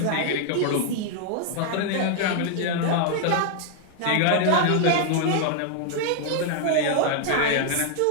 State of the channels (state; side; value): different; both; correlation 0.00